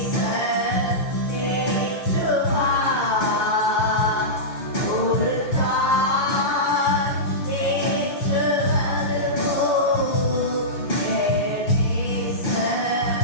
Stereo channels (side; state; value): right; late; 6.3 ms